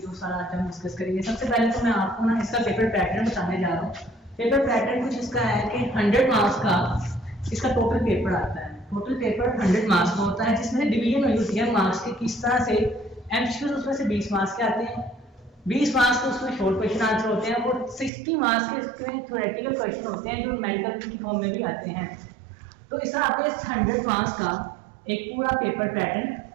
है, वो सारा आज हम डिस्कस करेंगे। सबसे पहले तो मैं आपको ना इसका पेपर पैटर्न बताने जा रहा हूँ। पेपर पैटर्न कुछ इसका है कि 100 मार्क्स का इसका टोटल पेपर आता है। टोटल पेपर 100 मार्क्स का होता है, जिसमें डिवीजन हुई होती है मार्क्स की किस तरह से। एमसीक्यूज उसमें से 20 मार्क्स के आते हैं, 20 मार्क्स के उसमें शॉर्ट क्वेश्चन आंसर होते हैं और 60 मार्क्स के इसमें थ्योरेटिकल क्वेश्चन होते हैं जो मेडिकल की फॉर्म में भी आते हैं। तो इस तरह आपके 100 मार्क्स का एक पूरा पेपर पैटर्न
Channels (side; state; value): left; drops out; at 18.1 s